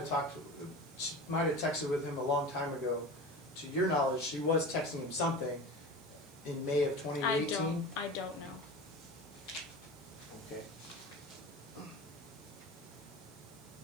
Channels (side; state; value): right; noise; hiss, 26 dB below the sound